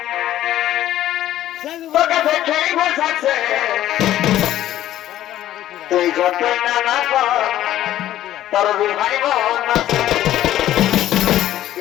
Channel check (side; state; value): right; quieter; 13.1 dB